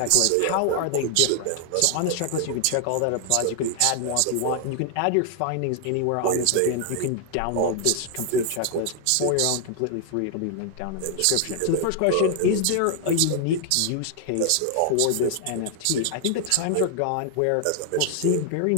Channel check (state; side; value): different; both; correlation 0.00